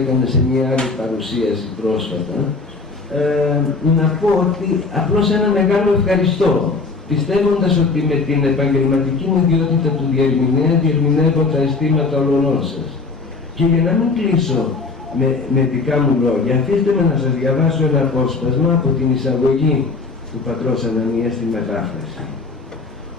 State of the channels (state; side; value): quieter; right; 4.1 dB